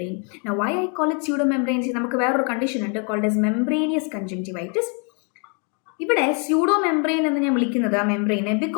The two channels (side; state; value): right; quieter; 38.0 dB